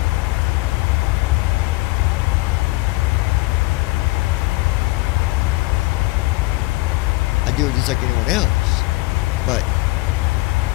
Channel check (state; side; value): quieter; right; 21.9 dB